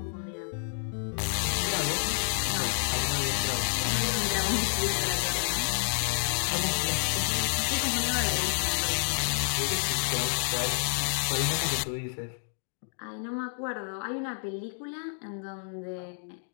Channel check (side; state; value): right; silent; 58 dB below the other